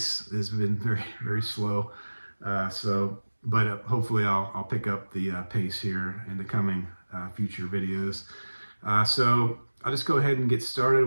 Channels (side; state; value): both; inverted; correlation -1.00